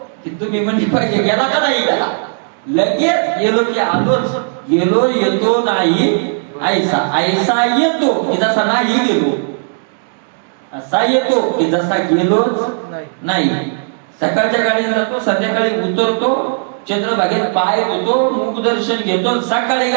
की तुम्ही म्हणजे पाहिजे गेला का नाही गेला, लगेच गेलो की आलोच. गेलो येतो नाही ऐसा, ऐसा येतो की जसा नाही गेलो, असा येतो की जसा गेलोच नाही. सकाळच्या गाडीने जातो, संध्याकाळी उतरतो, चंद्रभागेत पाय धुतो, मुख दर्शन घेतो. सकाळी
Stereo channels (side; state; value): left; silent; 69 dB below the other